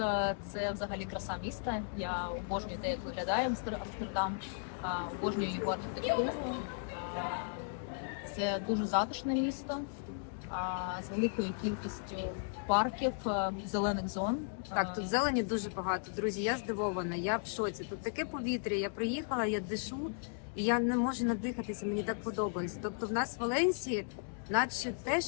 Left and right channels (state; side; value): silent; right; digital silence